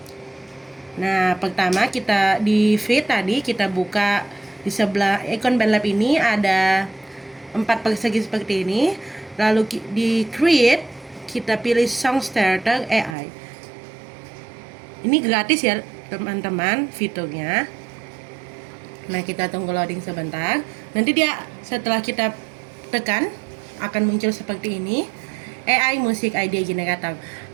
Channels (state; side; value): drops out; left; at 13.2 s